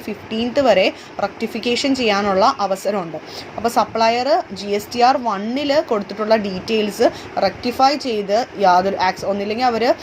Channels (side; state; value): both; identical; correlation 1.00